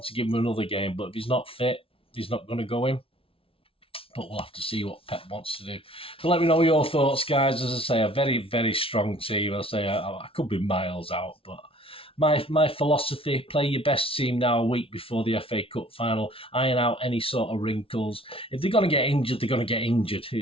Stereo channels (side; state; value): right; late; 0.26 ms